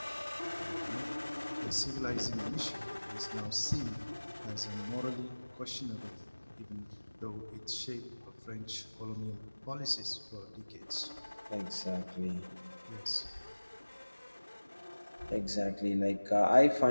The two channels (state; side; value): inverted; both; correlation -1.00